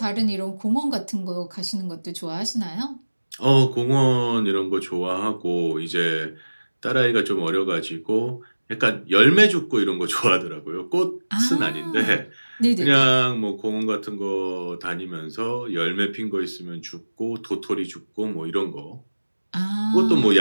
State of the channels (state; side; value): inverted; both; correlation -1.00